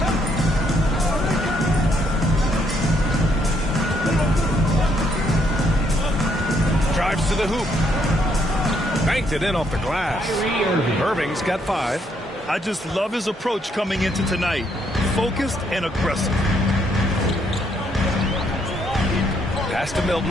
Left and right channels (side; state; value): both; normal; correlation 0.72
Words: Drives to the hoop. Banked it in off the glass. Irving's got 5. I just love his approach coming into tonight. Focused and aggressive. Pass to